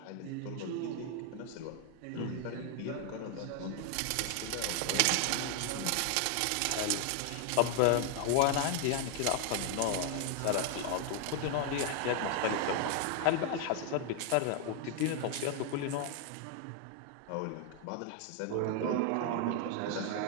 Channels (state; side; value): different; both; correlation 0.01